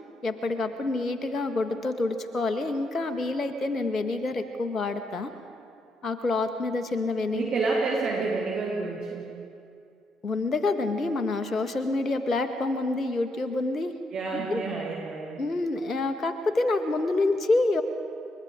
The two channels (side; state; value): both; normal; correlation 0.79